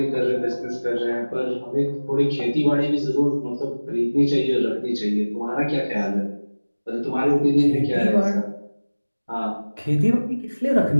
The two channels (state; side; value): inverted; both; correlation -1.00